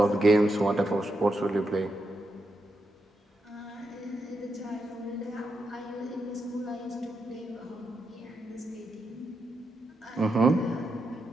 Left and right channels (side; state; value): both; normal; correlation 0.84